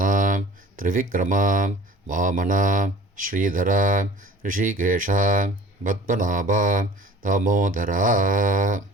திரிவிக்ரமா வாமனா ஸ்ரீதரா ரிஷிகேஷா பத்மநாபா தாமோதரா.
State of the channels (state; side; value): normal; both; correlation 0.45